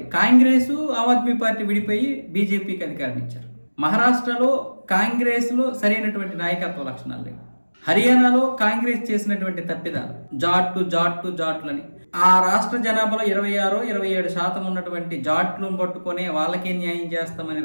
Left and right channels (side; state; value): both; inverted; correlation -1.00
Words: కాంగ్రెస్ ఆమ్ ఆద్మీ పార్టీ విడిపోయి బీజేపీకి అధికారం ఇచ్చారు. మహారాష్ట్రలో కాంగ్రెస్లో సరైనటువంటి నాయకత్వ లక్షణాలు లేవు. హర్యానాలో కాంగ్రెస్ చేసినటువంటి తప్పిదాలు, జాట్లని ఆ రాష్ట్ర జనాభాలో 26-27% ఉన్నటువంటి జాట్లను పట్టుకొని వాళ్ళకే న్యాయం చేస్తామని